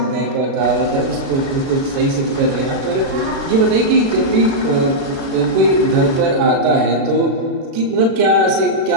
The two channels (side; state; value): left; late; 36 ms